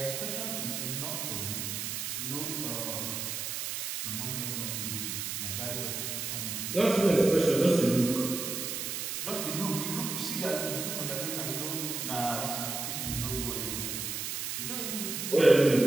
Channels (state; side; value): noise; right; hiss, 3 dB below the sound